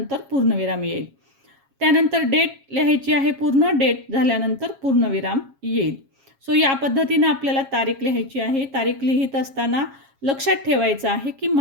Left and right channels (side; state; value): left; late; 7.3 ms